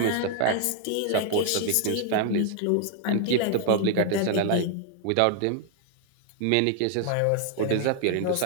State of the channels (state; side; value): different; both; correlation 0.00